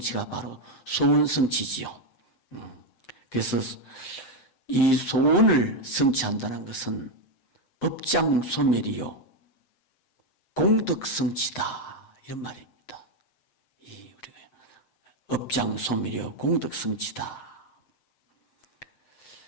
바로 소원 성취지요. 그래서 이 소원을 성취한다는 것은 업장소멸이요 공덕성취다 이런 말입니다. 이 우리가 업장소멸이요 공덕성취다.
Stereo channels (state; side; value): late; right; 7.7 ms